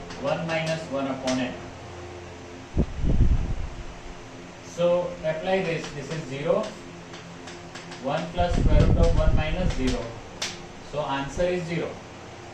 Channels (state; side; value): identical; both; correlation 1.00